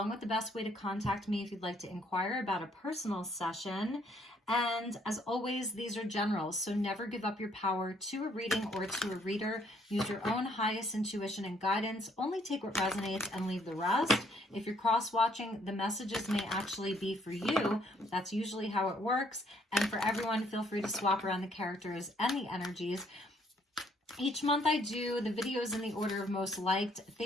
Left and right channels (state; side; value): normal; both; correlation 0.67